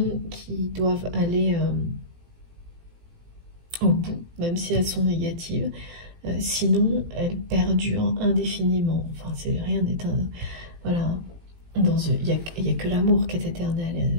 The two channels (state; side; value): late; left; 17 ms